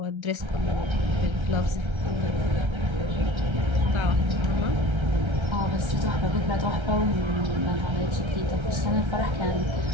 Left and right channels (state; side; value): late; left; 1.3 ms